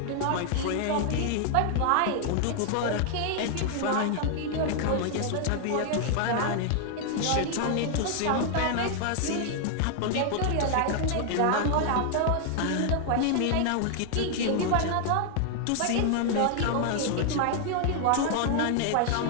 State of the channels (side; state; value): both; different; correlation 0.00